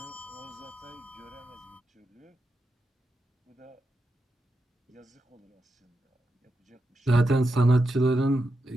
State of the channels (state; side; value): normal; both; correlation 0.87